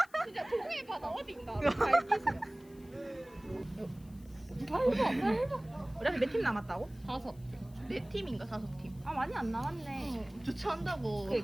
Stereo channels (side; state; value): left; noise; hiss, 27 dB below the sound